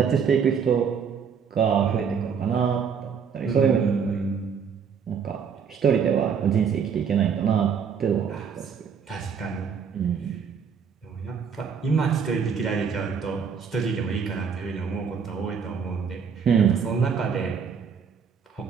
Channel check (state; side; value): quieter; left; 6.6 dB